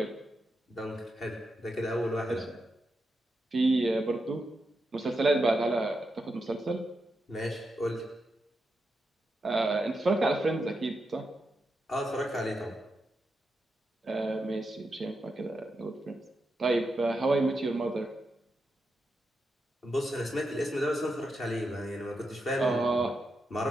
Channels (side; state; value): both; normal; correlation 0.86